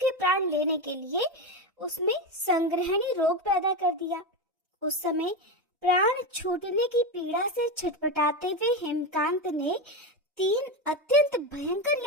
प्राण लेने के लिए उसमें संग्रहणी रोग पैदा कर दिया। उस समय प्राण छूटने की पीड़ा से छटपटाते हुए हेमकांत ने 3 अत्यंत भयंकर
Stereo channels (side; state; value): both; normal; correlation 0.15